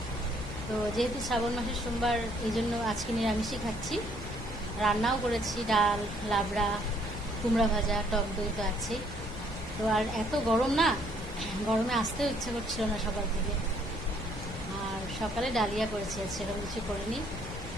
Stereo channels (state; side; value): noise; left; rumble, 10 dB below the sound